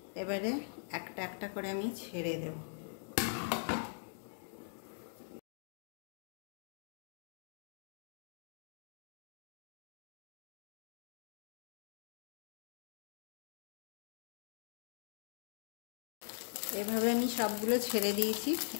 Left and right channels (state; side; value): silent; right; digital silence